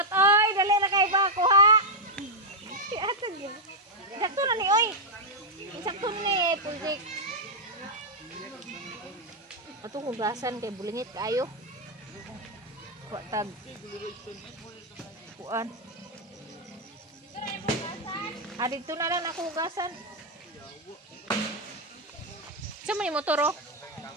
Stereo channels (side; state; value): both; normal; correlation -0.01